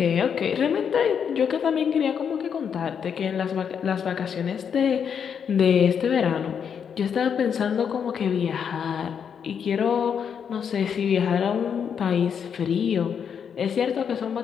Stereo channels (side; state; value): right; quieter; 7.4 dB